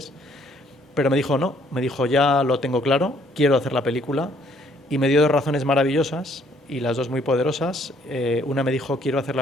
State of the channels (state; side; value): normal; both; correlation 0.64